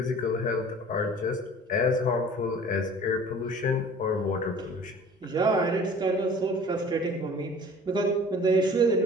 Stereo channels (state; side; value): normal; both; correlation 0.46